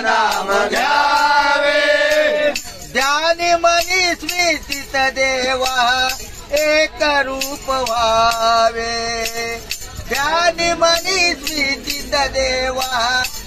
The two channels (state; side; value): identical; both; correlation 1.00